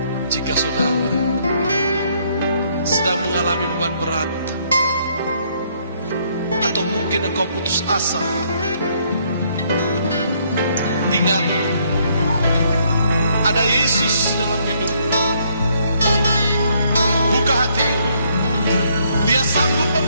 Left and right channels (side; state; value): both; inverted; correlation -0.69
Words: Jika saudara sedang mengalami beban berat, atau mungkin mungkin engkau putus asa, ingat, ada Yesus dalam hidupmu. Buka hatimu, Dia sanggup